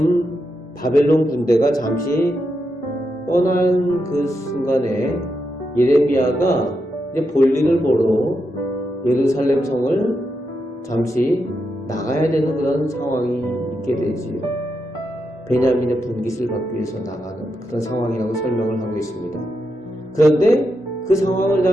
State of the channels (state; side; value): normal; both; correlation 0.85